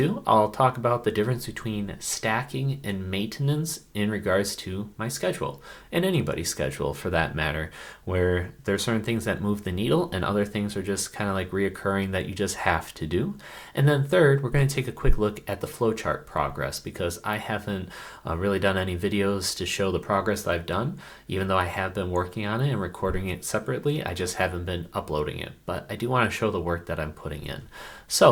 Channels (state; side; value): identical; both; correlation 1.00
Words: I'll talk about the difference between stacking and maintenance in regards to my schedule, and anybody's schedule for that matter, where there are certain things that move the needle and other things are just kind of like reoccurring that you just have to do. And then third, we're going to take a quick look at the flowchart progress because I haven't really done any videos to show the progress that I've done, even though I have been working on it and recording it separately. I just haven't been uploading it, but I do want to show the work that I'm putting in.